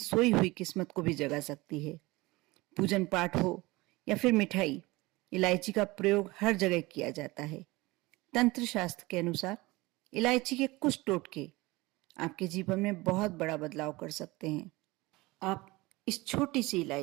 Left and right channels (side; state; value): left; quieter; 21.6 dB